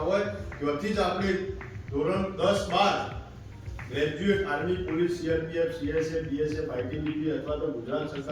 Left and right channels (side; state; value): both; identical; correlation 1.00